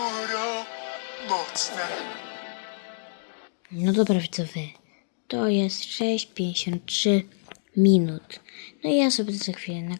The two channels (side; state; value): right; silent; digital silence